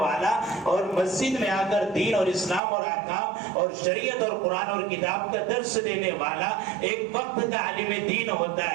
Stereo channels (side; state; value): left; drops out; at 2.6 s